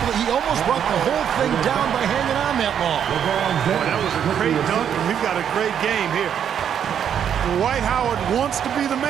believe he almost brought the whole thing down by hanging on that long? Boy, that was a great dunk, and we've got a great game here. Dwight Howard wants to be the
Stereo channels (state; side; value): quieter; left; 8.7 dB